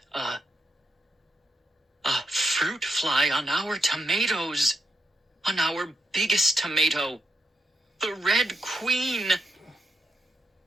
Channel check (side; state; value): both; normal; correlation 0.83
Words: fly on our tomatoes. On our biggest tomato. The Red Queen.